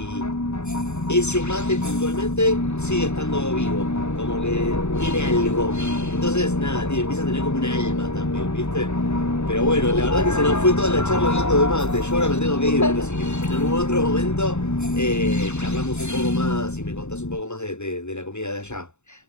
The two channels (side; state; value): right; late; 0.82 ms